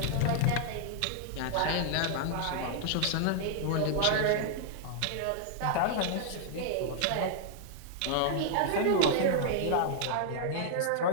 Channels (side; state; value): both; different; correlation -0.01